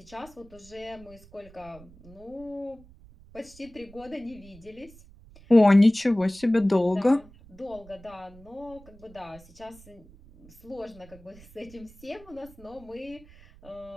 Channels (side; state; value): right; noise; rumble, 23 dB below the sound